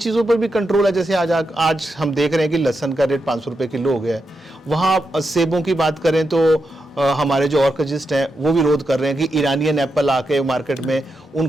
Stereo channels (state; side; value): normal; both; correlation 0.86